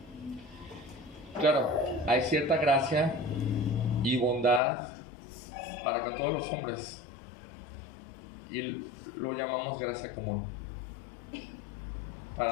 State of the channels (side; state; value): right; drops out; at 4.6 s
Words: Claro, hay cierta gracia y bondad para con todos los hombres. Y lo llamamos gracia común.